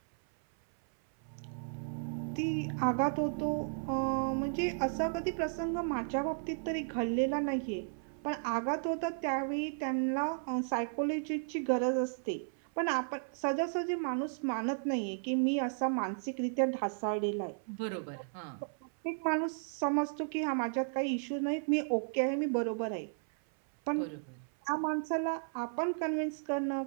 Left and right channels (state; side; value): silent; left; 55 dB below the other